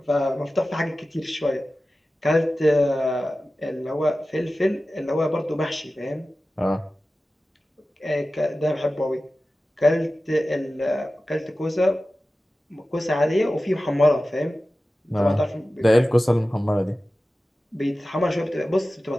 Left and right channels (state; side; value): normal; both; correlation 0.95